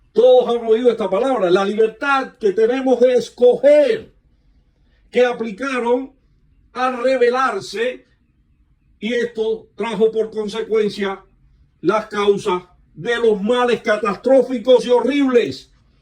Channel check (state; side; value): identical; both; correlation 1.00